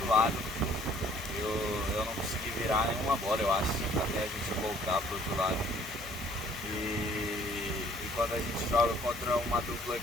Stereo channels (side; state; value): both; normal; correlation 0.58